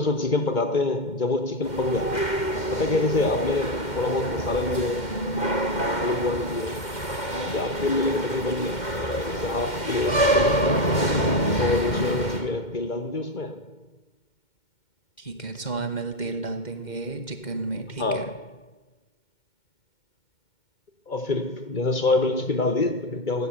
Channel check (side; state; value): right; late; 2.1 ms